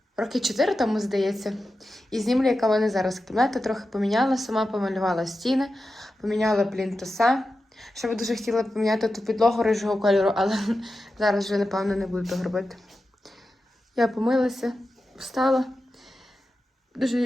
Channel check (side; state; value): both; normal; correlation 0.92